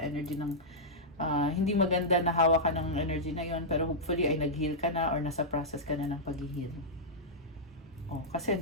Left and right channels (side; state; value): both; normal; correlation -0.09